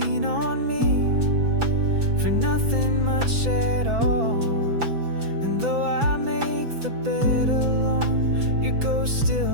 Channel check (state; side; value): late; left; 6.0 ms